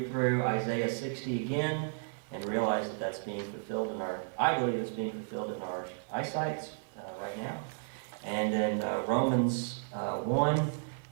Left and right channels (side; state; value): left; silent; 56 dB below the other